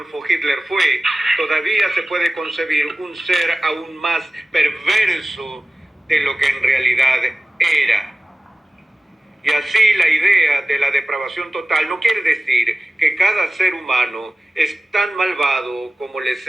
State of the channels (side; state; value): both; normal; correlation 0.96